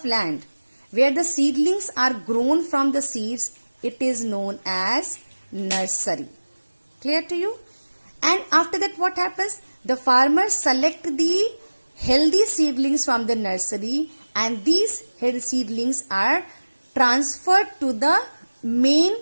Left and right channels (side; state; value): both; inverted; correlation -1.00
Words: land where the seedlings are grown from the seeds, it is known as nursery. Clear to you? And after that what happens? The farmers select the healthy seedlings from the nursery, and these healthy seedlings are transferred to the main